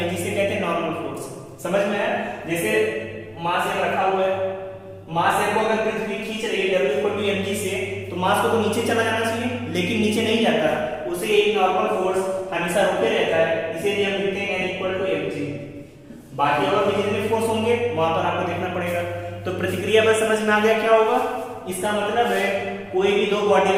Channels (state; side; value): identical; both; correlation 1.00